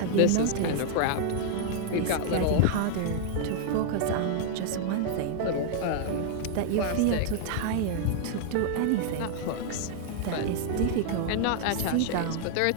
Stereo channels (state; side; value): different; both; correlation -0.01